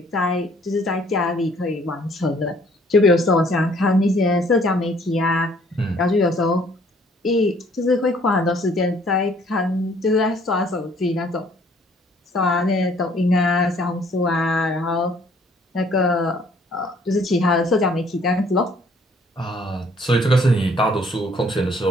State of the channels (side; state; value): both; normal; correlation 0.61